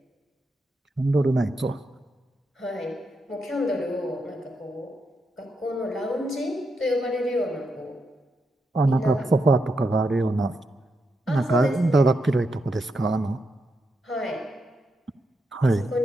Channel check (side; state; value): both; normal; correlation 0.83